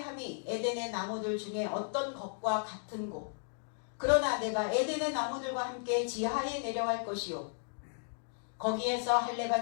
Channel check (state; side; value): silent; right; digital silence